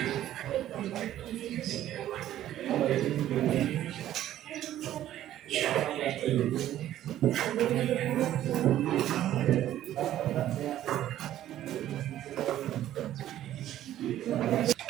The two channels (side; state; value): left; quieter; 12.6 dB